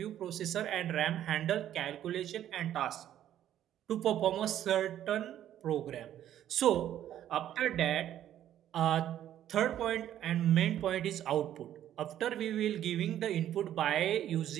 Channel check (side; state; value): left; quieter; 11.4 dB